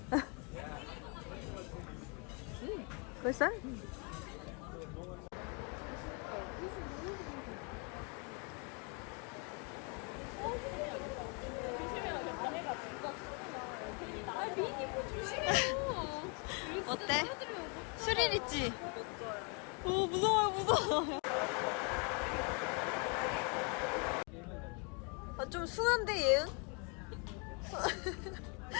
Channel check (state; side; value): quieter; right; 35.0 dB